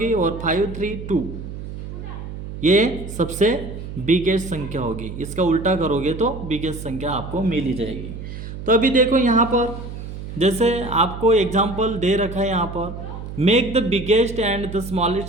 और 532 ये सबसे बिगेस्ट संख्या होगी। इसका उल्टा करोगे तो बिगेस्ट संख्या आपको मिल ही जाएगी। तो अभी देखो यहाँ पर जैसे आपको एग्जाम्पल दे रखा है, यहाँ पर make the biggest and the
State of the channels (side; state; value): right; noise; hum, 9 dB below the sound